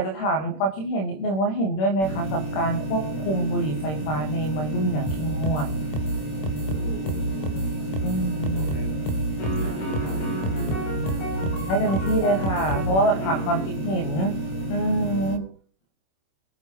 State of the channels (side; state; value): right; late; 26 ms